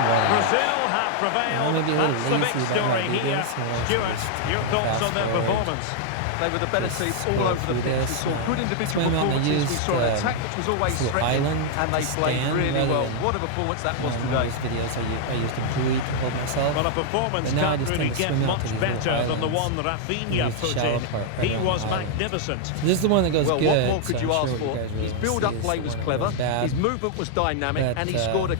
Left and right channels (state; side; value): different; both; correlation -0.01